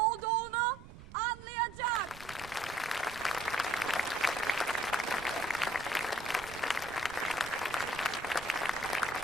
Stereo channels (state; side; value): noise; right; rumble, 16 dB below the sound